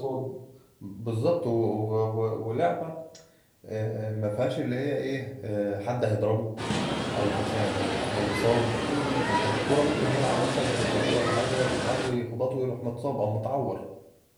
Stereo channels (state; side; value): identical; both; correlation 1.00